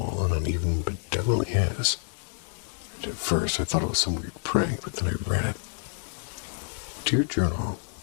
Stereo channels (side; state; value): right; silent; digital silence